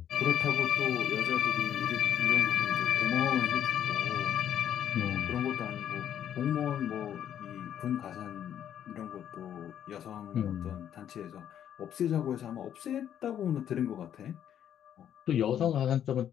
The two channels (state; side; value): quieter; right; 10.0 dB